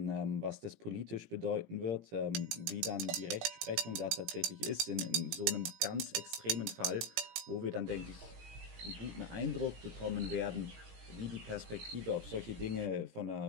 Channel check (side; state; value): left; late; 17 ms